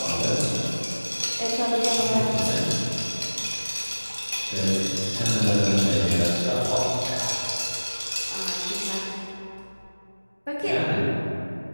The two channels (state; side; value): inverted; both; correlation -1.00